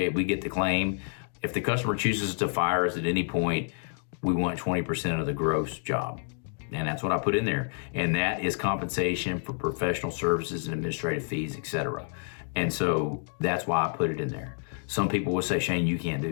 we get the claim. If the customer chooses to fire us at any point, we want 20% of the gross job. And that's what I put in there. And that is compensation for professional services and administrative fees, etc. And so that's why I put it in there. Some people will say, Shane, you can't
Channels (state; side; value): silent; right; digital silence